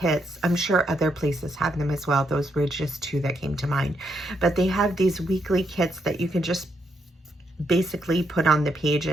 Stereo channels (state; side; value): normal; both; correlation 0.78